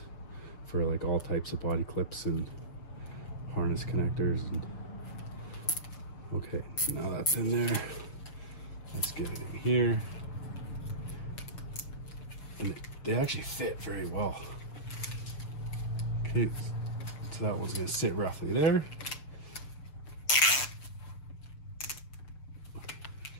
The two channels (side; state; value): right; late; 6.7 ms